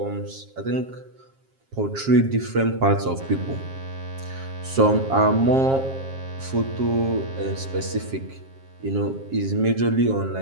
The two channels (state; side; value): late; left; 7.5 ms